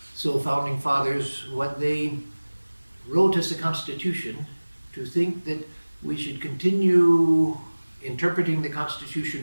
So founding fathers, what they wrote as the Constitution, to think that we should continue interpreting the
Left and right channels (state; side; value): inverted; both; correlation -1.00